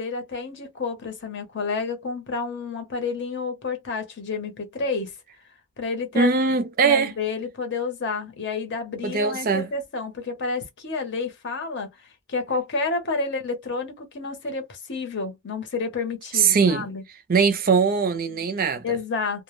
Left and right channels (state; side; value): normal; both; correlation 0.05